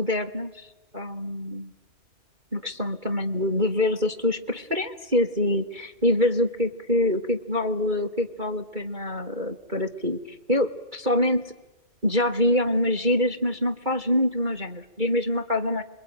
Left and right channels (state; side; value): late; left; 2.3 ms